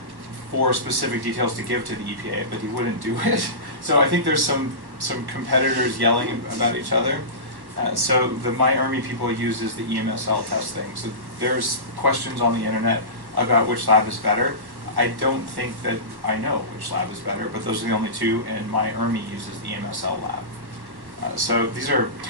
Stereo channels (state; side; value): late; left; 1.1 ms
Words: for specific details to give to the EPA, but he wouldn't do it. So I think there's some competitors yelling about each other. So the MyERMI people uses the EMSL testing. So there's questions on the internet about which lab is better. I don't think that I know which lab is better, but those are the only two, and MyERMI uses the EMSL lab. So these are